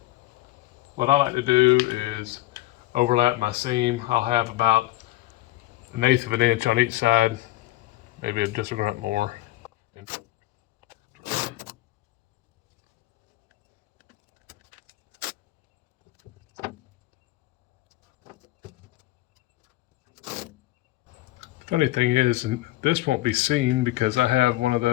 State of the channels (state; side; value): quieter; right; 17.5 dB